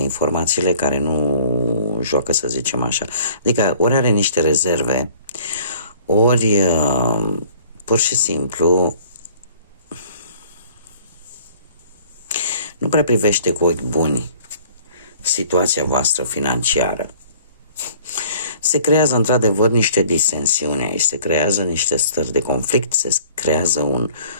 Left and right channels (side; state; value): both; inverted; correlation -0.53